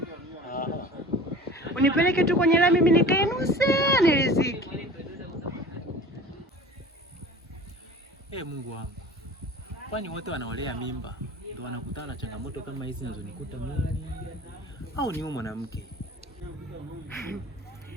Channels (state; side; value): normal; both; correlation 0.40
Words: Unipeleke tu kwenye lami, mimi nikae nusu niriziki. Mungu wangu. Kwani wote wanaolea mimba ndio wanakutana na changamoto kama hizi zinazonikuta mimi? Au ni mwanamke?